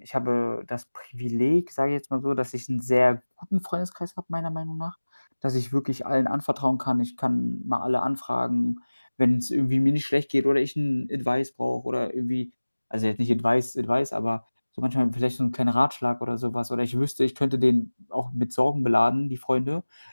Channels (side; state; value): both; inverted; correlation -1.00